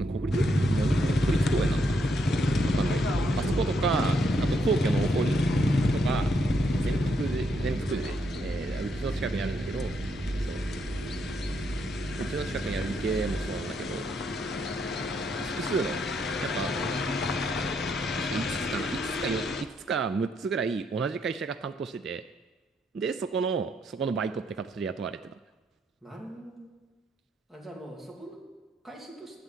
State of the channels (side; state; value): both; normal; correlation 0.75